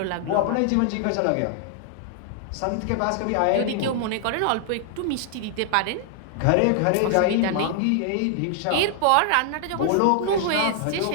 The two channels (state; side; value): different; both; correlation 0.00